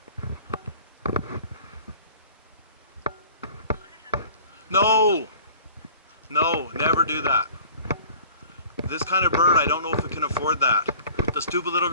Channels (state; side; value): inverted; both; correlation -0.46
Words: No! No, never do that. This kind of bird, I don't know if it can afford that. The stupid little